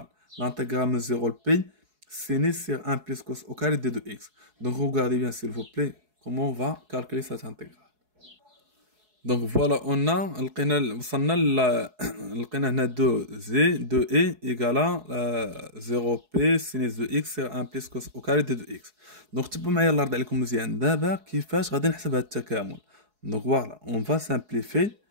L'intégrale de 0 P, sinus sur 1 plus cos au carré de 2x. Donc regardez bien s'il vous plaît comment on va calculer cette intégrale. Donc voilà, on a لقينا هنا 2 égale à 0p sinus de x sur 1 plus cos au carré de 2x. Donc تبعوا معايا الله يرضي عليكم مزيان دابا كيفاش غادي نحسب هذا التكامل. Donc voilà, on va simplifier.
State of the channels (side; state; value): left; late; 4.7 ms